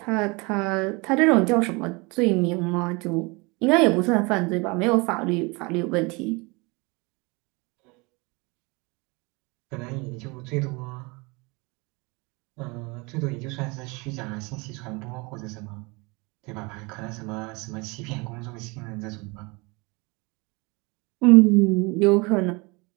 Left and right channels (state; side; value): quieter; left; 27.1 dB